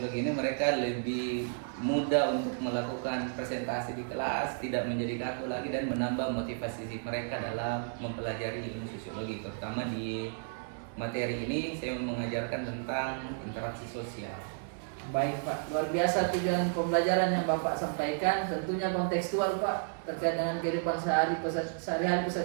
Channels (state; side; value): silent; left; 56 dB below the other